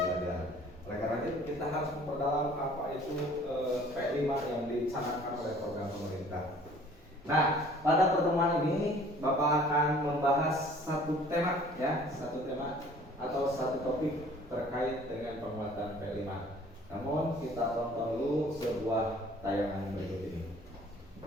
Oleh karena itu kita harus memperdalam apa itu P5 yang dicanangkan oleh program pemerintah. Nah, pada pertemuan ini Bapak akan membahas satu tema ya, satu tema atau satu topik terkait dengan penguatan P5. Namun kita tonton dulu sebuah tayangan berikut ini.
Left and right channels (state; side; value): normal; both; correlation 0.52